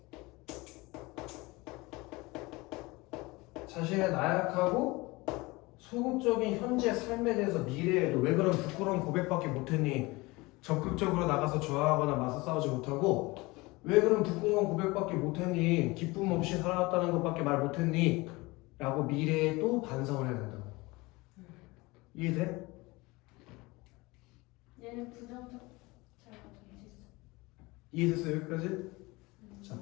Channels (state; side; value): quieter; right; 23.0 dB